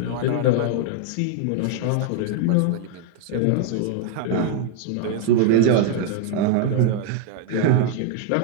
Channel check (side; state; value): both; different; correlation 0.00